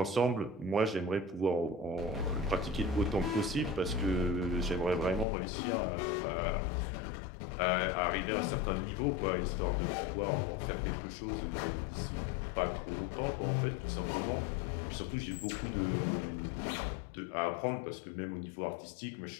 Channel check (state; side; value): drops out; right; at 5.2 s